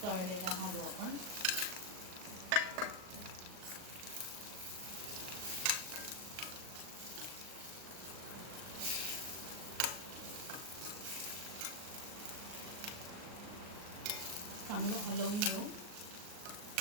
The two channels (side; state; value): left; late; 39 ms